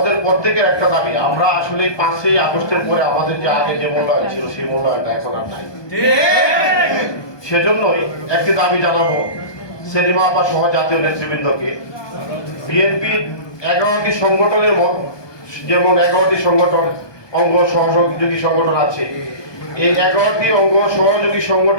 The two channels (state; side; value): late; right; 1.2 ms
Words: প্রত্যেকের একটা দাবি, আমরা আসলে 5ই আগস্টের পরে আমাদের যে আগে যে মূল্যায়ন ছিল সেই মূল্যায়নটা এখন আর নাই। সেজন্যই একটি দাবি জানাবো সেলিমা আপা সহ জাতীয় নেতৃবৃন্দকে, বিএনপির 11টি সংগঠনের যেমন 11টি সংগঠন অঙ্গ সহযোগী সংগঠন আছে, এই 11টি অঙ্গ সহযোগী